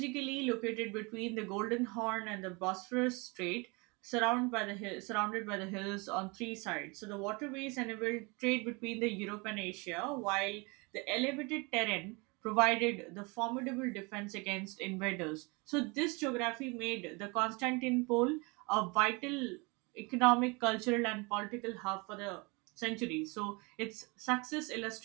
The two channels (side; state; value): left; quieter; 28.1 dB